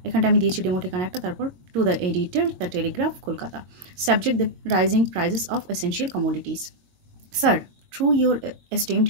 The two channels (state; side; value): late; left; 23 ms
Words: এখানটা আমি দিয়েছি ডেমো ঠিকানা একটা, তারপর to the editor the Telegraph Kolkata. Subject দেব rising prices of essential commodities. Sir, through your esteemed